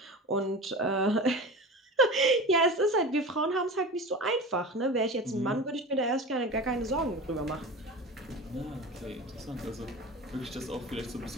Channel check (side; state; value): both; normal; correlation 0.31